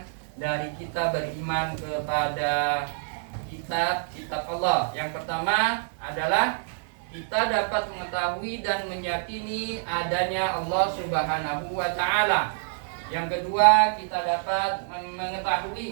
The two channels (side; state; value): left; silent; digital silence